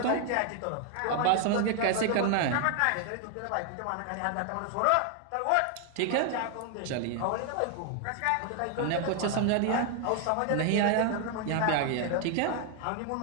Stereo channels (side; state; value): both; different; correlation 0.00